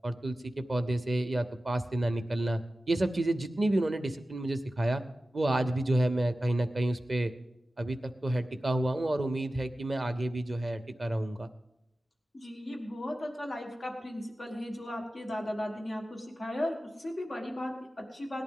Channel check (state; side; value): normal; both; correlation 0.95